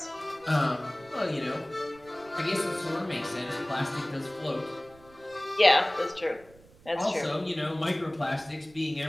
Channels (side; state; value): right; noise; rumble, 26 dB below the sound